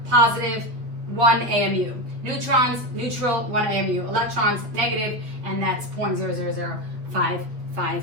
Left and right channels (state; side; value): late; left; 8.7 ms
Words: positive, 1 AMU. Neutrons, neutral, 1 AMU. Electrons, negative, and that's